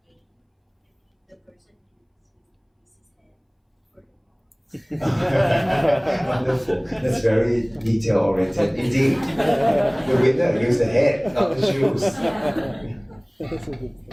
game, the person uses his head for the ball. Wonderful. That's very detail oriented. Indeed, the winner used the head, not the shoes.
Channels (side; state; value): both; identical; correlation 1.00